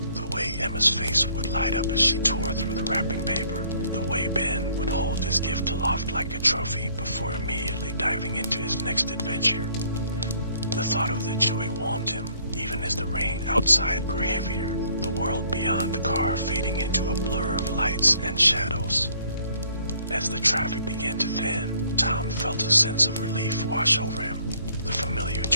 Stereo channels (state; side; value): inverted; both; correlation -0.63